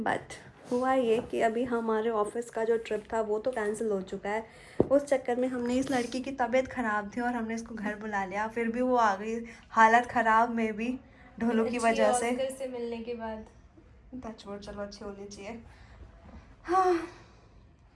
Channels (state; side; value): identical; both; correlation 1.00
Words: हुआ ये कि अभी हमारे ऑफिस का जो ट्रिप था वो तो कैंसिल हो चुका है। उस चक्कर में हमने, इस लड़की की तबीयत ख़राब थी और हमने इसको घर बुला लिया, फिर भी वो आ गई हालत ख़राब में भी ढोलों की वजह से मिलने के बाद। टचवुड, चलो अच्छी होनी चाहिए। हाँ